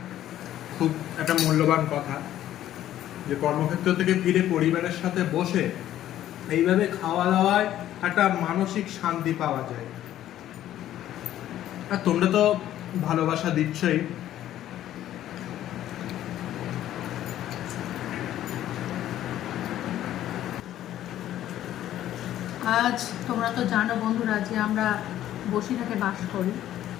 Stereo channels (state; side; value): quieter; right; 12.5 dB